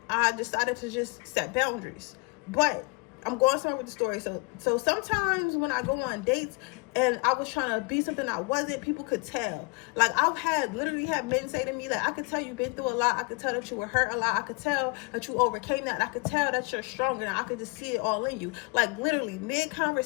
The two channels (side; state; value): right; quieter; 28.3 dB